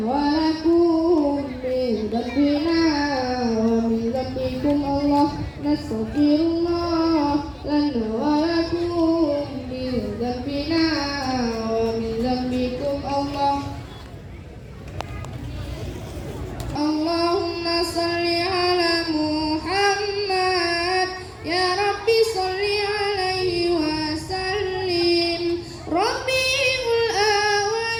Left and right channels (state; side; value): identical; both; correlation 1.00